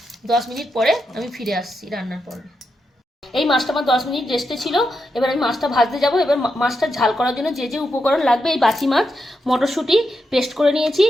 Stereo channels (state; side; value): normal; both; correlation 0.85